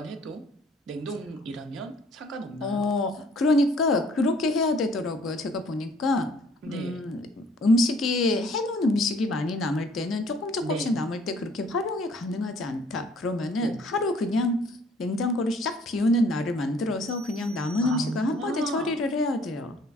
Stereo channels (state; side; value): normal; both; correlation 0.58